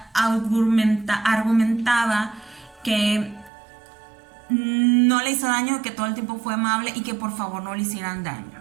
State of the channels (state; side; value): drops out; left; at 3.5 s